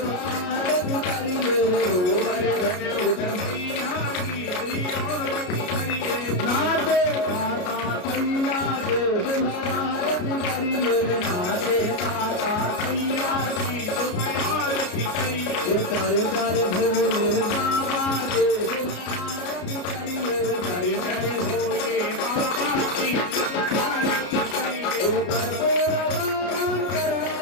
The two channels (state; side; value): late; right; 33 ms